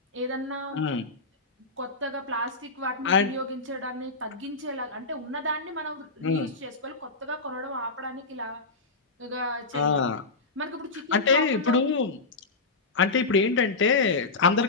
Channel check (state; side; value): quieter; right; 3.7 dB